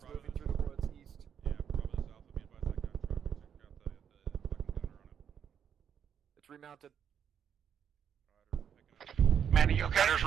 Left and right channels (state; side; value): quieter; left; 8.2 dB